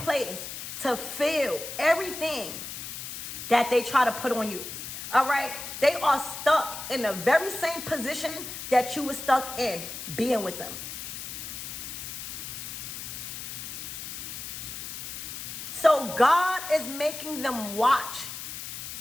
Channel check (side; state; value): left; noise; hiss, 8 dB below the sound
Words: to feel everything that they try to put on you, all right? They are stuck in the very same position that you were stuck in being with them. So God is making them watch